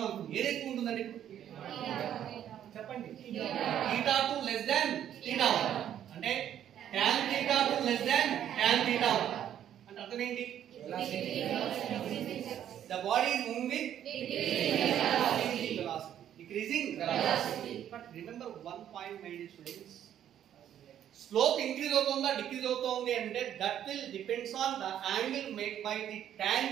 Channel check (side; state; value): left; quieter; 10.4 dB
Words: అనుకోండి ఏది ఎక్కువ ఉంటుందండి చెప్పండి theta 2 less than theta 1 అంటే tan theta 2 less than tan theta 1 అంటే అర్థం ఏంటి the body is moving with decreasing velocity. But remember one point my dear students, slope increase అవుతుందా డిక్రీజ్ అవుతుంది అంటే that will depends on the angle made by the